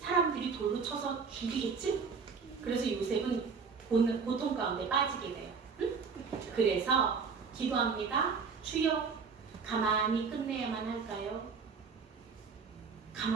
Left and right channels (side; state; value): left; quieter; 5.4 dB